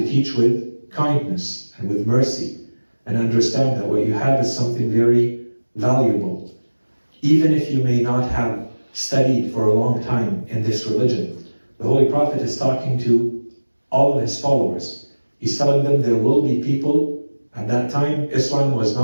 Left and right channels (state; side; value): inverted; both; correlation -1.00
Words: teach with kindness and with mercy, and understand that what you have is something very valuable. Even if you may not have studied for a long time in this religion, the Holy Prophet is talking to all of his followers. He's telling them there will be people. At that time, Islam was